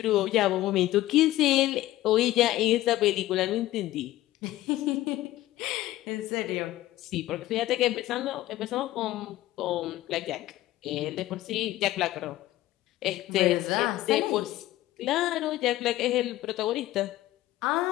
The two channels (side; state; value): right; quieter; 15.7 dB